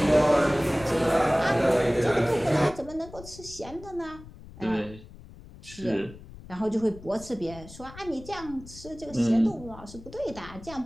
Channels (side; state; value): left; noise; rumble, 17 dB below the sound